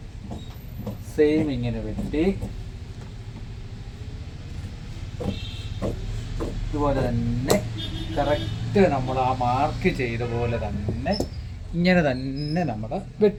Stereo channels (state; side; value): identical; both; correlation 1.00